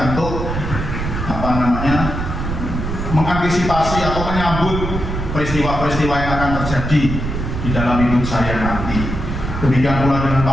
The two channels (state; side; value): noise; right; rumble, 4 dB below the sound